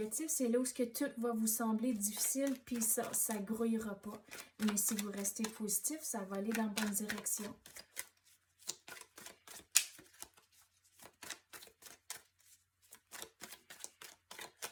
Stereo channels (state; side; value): identical; both; correlation 1.00